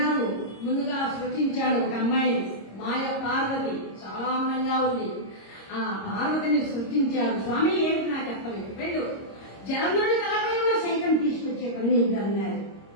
ముందుగా సృష్టించాడు ఒక అమ్మాయిని, మాయ పార్వతి, చాలా అందంగా ఉంది. ఆ పార్వతిని సృష్టించాడు. స్వామి ఏంటి నాకు అర్థమైంది, వెళ్ళు జలంధ్రుడి తలపై ఉన్న శంఖం తీసుకొచ్చే పని అన్నారు.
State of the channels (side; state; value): right; late; 26 ms